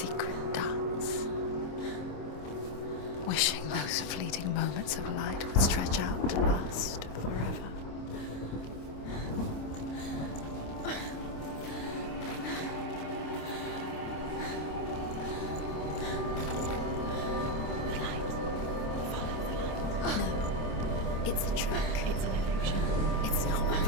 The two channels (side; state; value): right; late; 26 ms